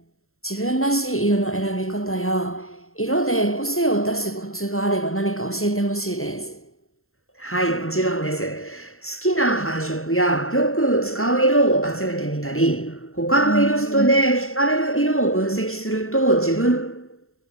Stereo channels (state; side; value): late; right; 0.62 ms